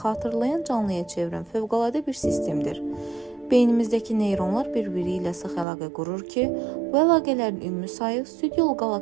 xatırlayan canlıya çevirən fövqəladə bir sistemdir. Beynimizdəki neyronlar bir-biri ilə sıx əlaqə qurur ki, bu əlaqələrin ümumi sayı Süd yolu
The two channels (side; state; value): left; drops out; at 5.7 s